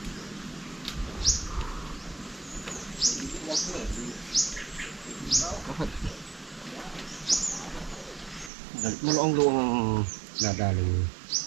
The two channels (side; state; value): left; drops out; at 8.5 s